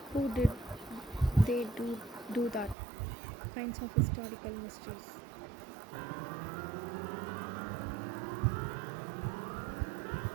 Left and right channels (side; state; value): left; drops out; at 2.8 s